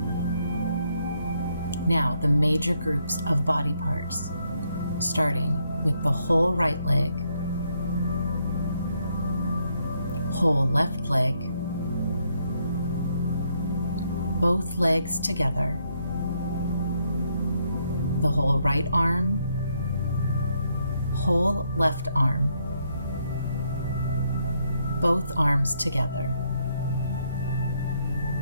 Now, the major groups of body parts, starting with the whole right leg, whole left leg, both legs together, the whole right arm, whole left arm, both arms together,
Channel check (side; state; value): both; inverted; correlation -0.74